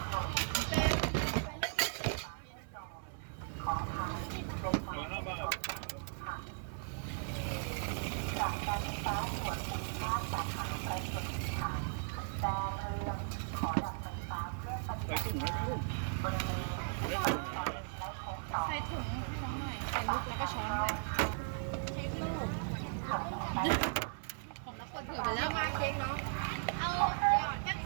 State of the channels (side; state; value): left; silent; 53 dB below the other